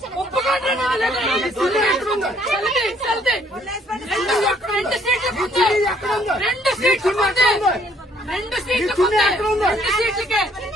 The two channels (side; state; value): both; normal; correlation 0.64